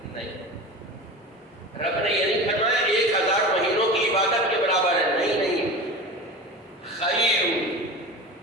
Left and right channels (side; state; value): both; normal; correlation 0.31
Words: نہیں. رب نے یہ نہیں فرمایا 1000 مہینوں کی عبادت کے برابر ہے. نہیں، خیر،